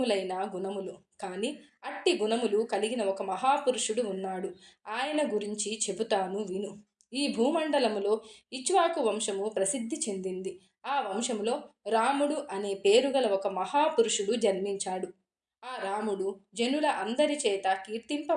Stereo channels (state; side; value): identical; both; correlation 1.00